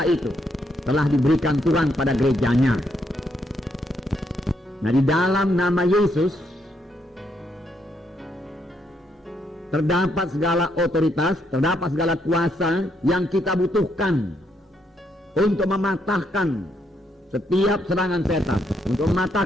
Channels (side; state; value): both; normal; correlation 0.75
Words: itu telah diberikan Tuhan pada gerejanya. Nah, di dalam nama Yesus terdapat segala otoritas, terdapat segala kuasa yang kita butuhkan untuk mematahkan setiap serangan setan, untuk